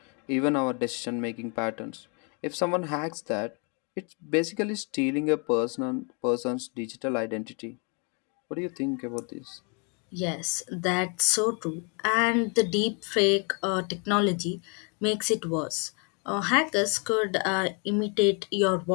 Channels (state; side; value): quieter; right; 35.6 dB